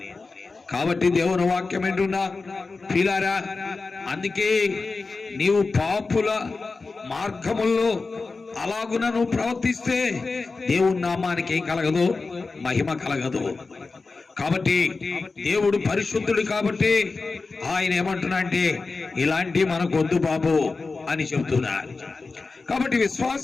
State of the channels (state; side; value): quieter; right; 4.0 dB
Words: కాబట్టి దేవుని వాక్యం ఏంటున్నా ప్రియులారా, అందుకే నీవు పాపుల మార్గముల్లో అలాగున నువ్వు ప్రవర్తిస్తే దేవుని నామానికి ఏం కలగదు, మహిమ కలగదు. కాబట్టి దేవుడు పరిశుద్ధుడు కాబట్టి ఆయన ఏమంటున్నా అంటే ఇలాంటి మనకు వద్దు బాబు అని చెబుతున్నారు. కాబట్టి